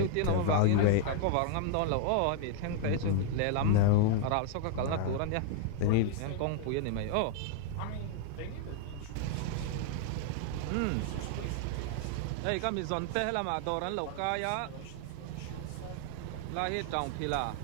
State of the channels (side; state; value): both; different; correlation 0.00